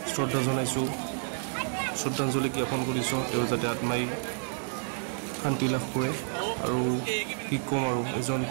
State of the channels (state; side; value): silent; left; digital silence